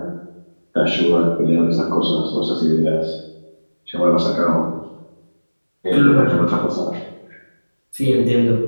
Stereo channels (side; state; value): both; inverted; correlation -1.00